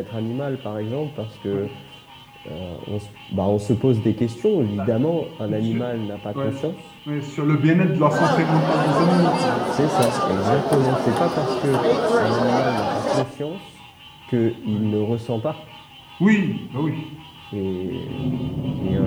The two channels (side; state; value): both; identical; correlation 1.00